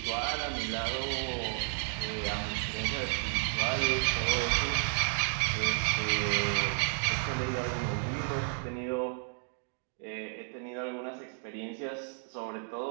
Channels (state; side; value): silent; left; 56 dB below the other